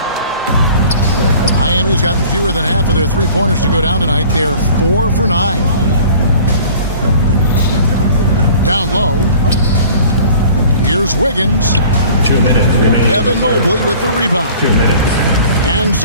Miami's gotten fewer than half of their three-pointers to go down tonight. They're 4 for 9. Down low. Here's Wiggins. 2 minutes remaining. Evan Mobley with the rebound. 2 minutes. And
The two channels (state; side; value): inverted; both; correlation -0.48